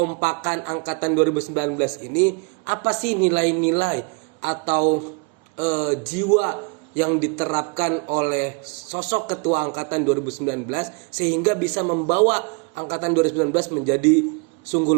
angkatan 2019 ini, apa sih nilai-nilai atau jiwa yang diterapkan oleh sosok ketua angkatan 2019 sehingga bisa membawa angkatan 2019 menjadi sungguh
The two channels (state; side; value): quieter; left; 32.8 dB